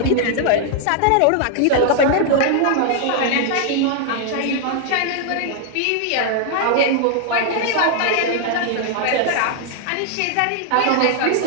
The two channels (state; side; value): different; both; correlation 0.00